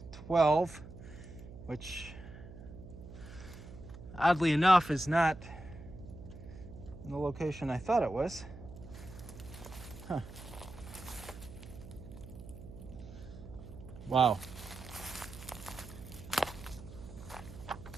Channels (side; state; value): right; noise; hum, 14 dB below the sound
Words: 12, which oddly enough is not in the location I thought it was. Huh. Wow.